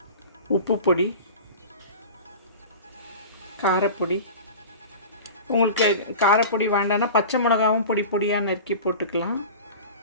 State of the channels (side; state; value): both; inverted; correlation -0.34